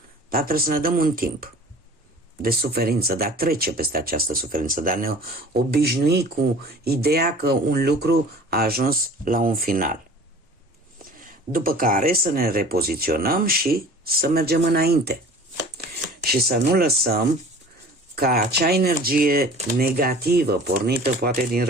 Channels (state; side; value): normal; both; correlation 0.44